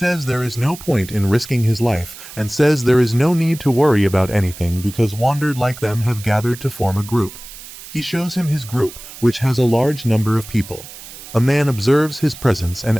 there is no point in risking his life and says there is no need to worry about anything because wandered like them have gathered to form a group. He shows him his group, which has a large number of people. A man observes his presence and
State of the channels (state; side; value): noise; right; hiss, 15 dB below the sound